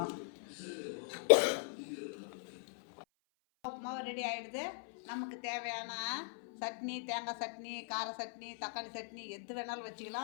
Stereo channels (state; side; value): silent; right; 51 dB below the other